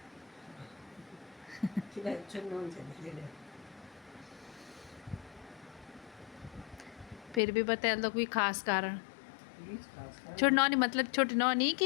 फिर भी बता दो कोई खास कारण। छोटी नौनी मतलब छोटी नौनी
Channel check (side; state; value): right; drops out; at 7.4 s